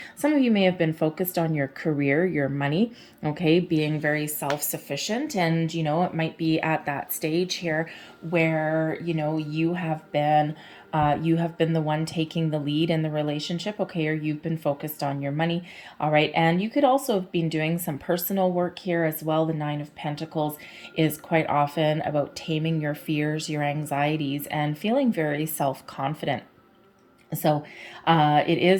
Some of you may have been focused on your career, your money, okay, being very self-sufficient. And, you know, it might be at that stage here where, you know, you have been the one taking the lead in the relationship, okay, or you've been focused on your money, all right. And you could also have been doing some personal work here as well. The Nine of Pentacles is quite often about taming your fears, your anxieties, and feeling very self-confident. So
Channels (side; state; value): both; identical; correlation 1.00